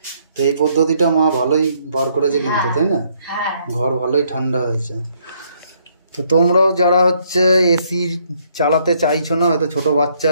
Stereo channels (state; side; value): inverted; both; correlation -0.69